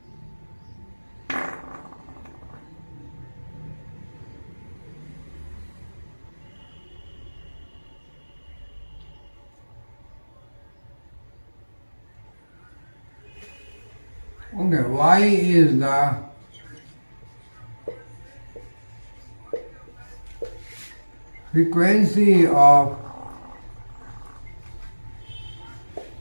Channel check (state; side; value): inverted; both; correlation -1.00